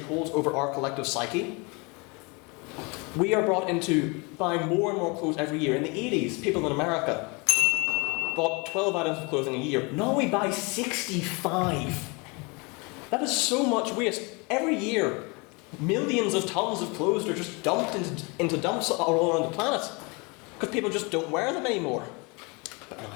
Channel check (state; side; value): quieter; right; 29.4 dB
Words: holds over our collective psyche, we are brought into buying more and more clothes every year. In the 80s, people in America bought 12 items of clothing a year. Now we buy 65. That is so much waste. Every year, millions of tons of clothes are just dumped into dumps all around the planet because people just don't wear them anymore. But no,